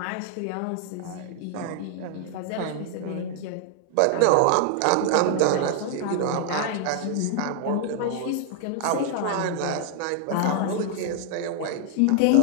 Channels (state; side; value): different; both; correlation 0.00